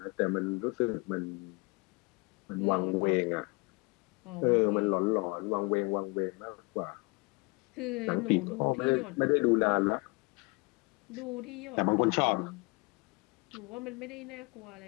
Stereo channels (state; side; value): quieter; right; 28.5 dB